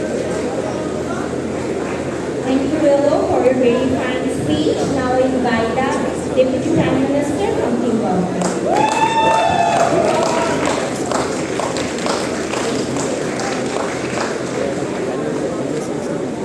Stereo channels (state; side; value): noise; left; hum, 27 dB below the sound